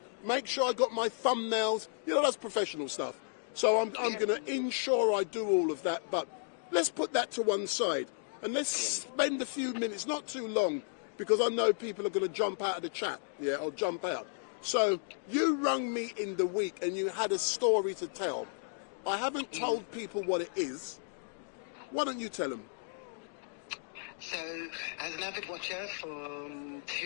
make sure I got my thumbnails. You know, that's professional stuff. So I'm going to ensure I do all of that, but let's put that to one side and let's spend a few minutes, not too long, because I know people are going to jump out of the chat, yeah, or jump out. So you rung me in the week and you had a story to tell. I haven't told people what it is. Why don't you tell them? So, as an avid watcher from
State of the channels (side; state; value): right; silent; digital silence